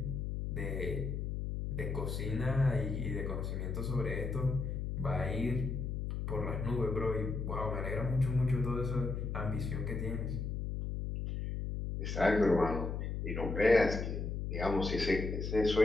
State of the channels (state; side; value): noise; left; hum, 3 dB below the sound